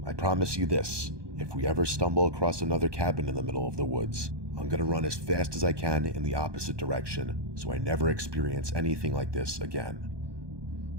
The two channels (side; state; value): left; late; 1.2 ms